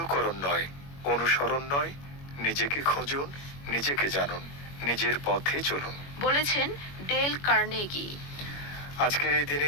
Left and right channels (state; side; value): late; right; 21 ms